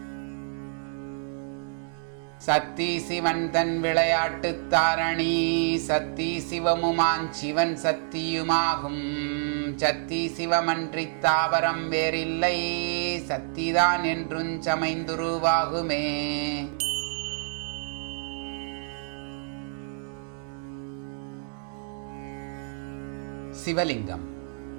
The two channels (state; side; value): silent; left; 59 dB below the other